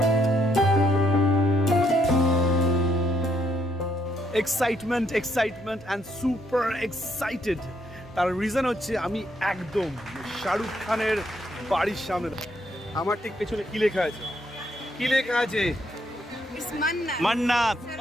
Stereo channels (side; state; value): both; normal; correlation 0.73